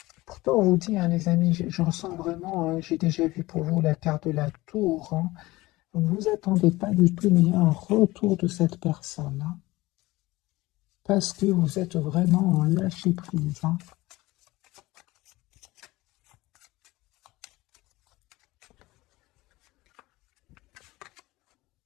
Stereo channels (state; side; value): quieter; right; 19.6 dB